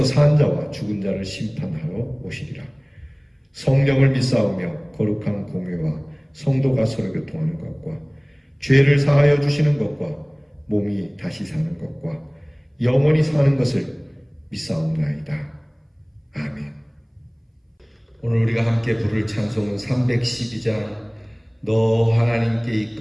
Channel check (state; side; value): identical; both; correlation 1.00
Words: 산 자와 죽은 자를 심판하러 오시리라. 성령을 믿사오며 거룩한 공회와 성도가 서로 교통하는 것과 죄를 사하여 주시는 것과 몸이 다시 사는 것과 영원히 사는 것을 믿사옵나이다. 아멘. 오늘 우리가 함께 부를 찬송은 312장 너 하나님께